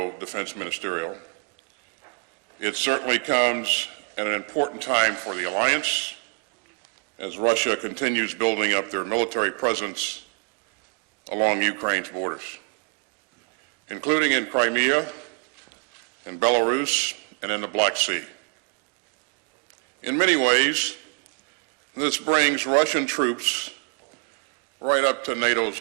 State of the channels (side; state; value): left; quieter; 39.3 dB